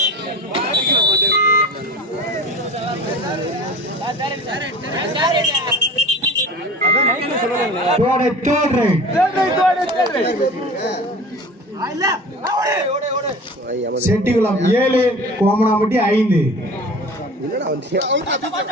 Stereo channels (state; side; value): normal; both; correlation 0.39